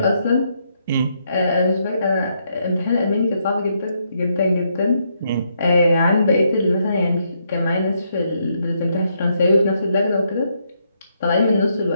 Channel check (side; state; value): both; inverted; correlation -0.76